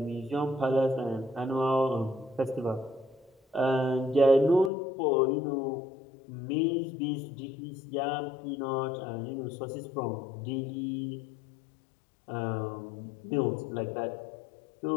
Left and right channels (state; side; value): drops out; right; at 4.7 s